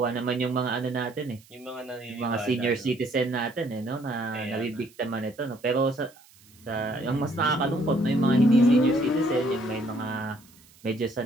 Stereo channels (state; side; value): noise; right; hiss, 27 dB below the sound